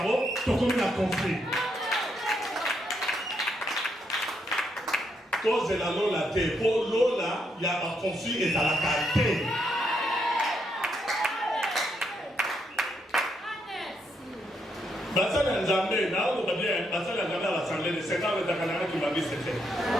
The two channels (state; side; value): normal; both; correlation 0.77